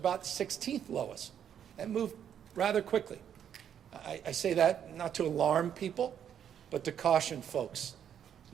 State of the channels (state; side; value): quieter; left; 9.1 dB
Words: 16th lowest and moved rather quickly. I say that not to alarm people, but to caution folks